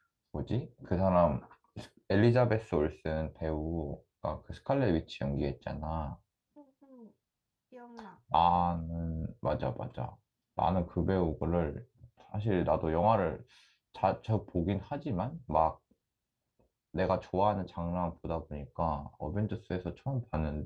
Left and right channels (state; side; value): identical; both; correlation 1.00